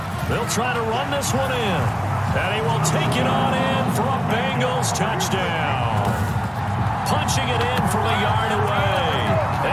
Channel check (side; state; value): both; identical; correlation 1.00